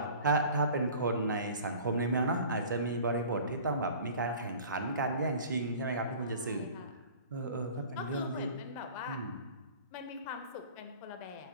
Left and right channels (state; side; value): inverted; both; correlation -0.44